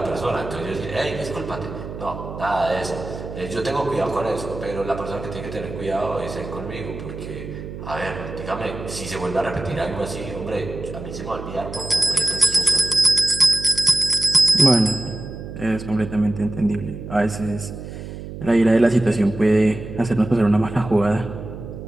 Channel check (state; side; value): noise; right; hum, 10 dB below the sound